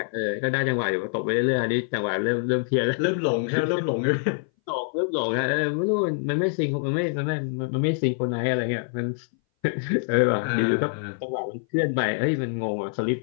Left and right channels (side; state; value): right; silent; 59 dB below the other